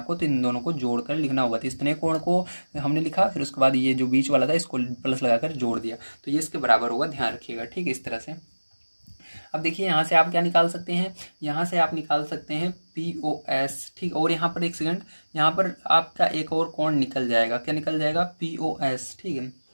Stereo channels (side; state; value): both; inverted; correlation -1.00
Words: तो इन दोनों को जोड़ कर लिखना होगा। तो इतने कोण को हमने लिखा, फिर उसके बाद ये जो बीच वाला था इसको प्लस लगाकर जोड़ दिया, तो ये इसके बराबर होगा, ध्यान रखिएगा, ठीक है, इस तरह से। अब देखिए यहाँ से आप क्या निकाल सकते हैं, यहाँ से आप निकाल सकते हैं POS, ठीक, और यहाँ पर एक सेकंड, यहाँ पर आपका एक और कोण निकल जाएगा, क्या निकल जाएगा, POS, ठीक है।